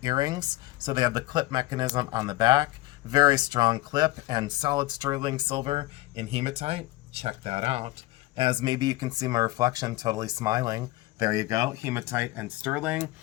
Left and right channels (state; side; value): quieter; right; 18.5 dB